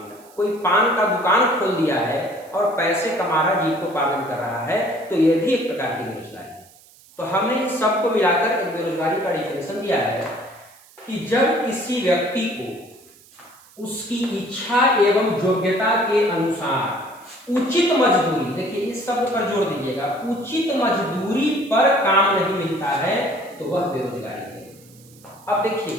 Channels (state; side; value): noise; right; hiss, 26 dB below the sound